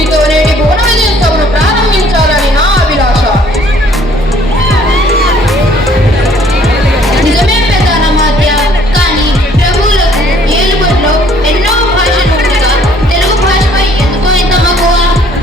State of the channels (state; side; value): normal; both; correlation 0.60